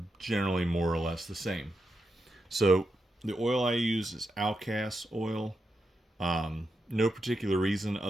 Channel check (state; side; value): normal; both; correlation 0.86